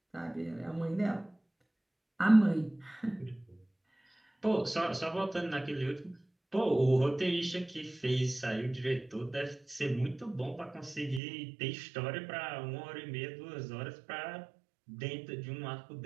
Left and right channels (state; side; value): drops out; left; at 11.2 s